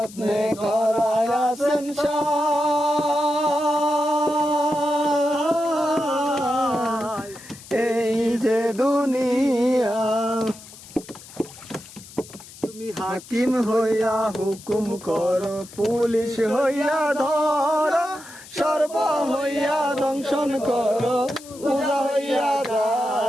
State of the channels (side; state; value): left; noise; hiss, 18 dB below the sound